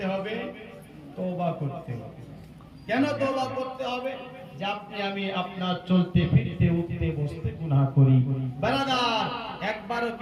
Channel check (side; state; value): both; identical; correlation 1.00